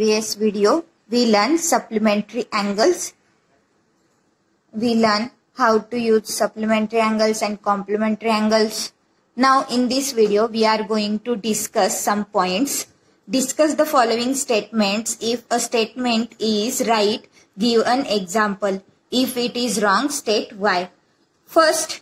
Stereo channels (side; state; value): both; identical; correlation 1.00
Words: video, we learned supplementary angles. We learned how to use supplementary angles and complementary angles. Now in this video, we are going to discuss some points. Discuss the following statements. If a statement is right, give an example. If it is wrong, state why. First,